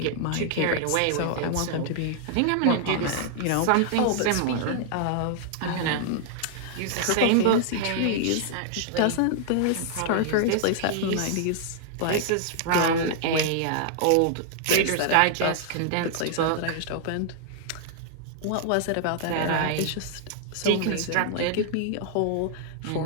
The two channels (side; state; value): both; different; correlation -0.01